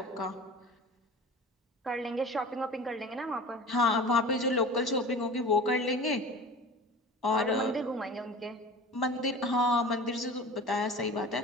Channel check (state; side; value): normal; both; correlation 0.38